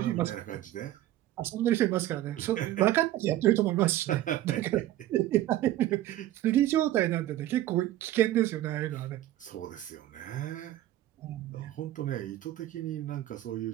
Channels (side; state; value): left; quieter; 14.1 dB